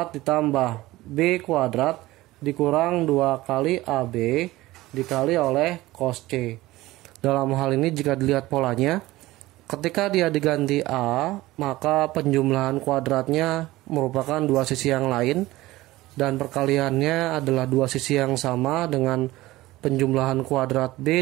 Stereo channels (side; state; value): left; quieter; 18.1 dB